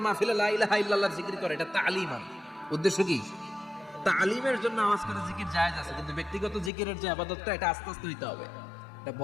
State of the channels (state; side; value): drops out; right; at 6.7 s